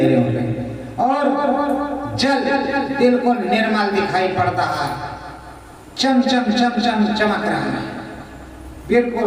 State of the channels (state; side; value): identical; both; correlation 1.00